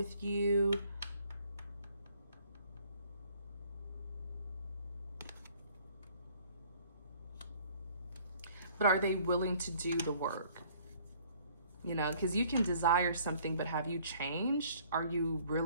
you. But are they willing to do the work? Because you can desire something, but have you changed? Are you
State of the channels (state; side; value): inverted; both; correlation -0.58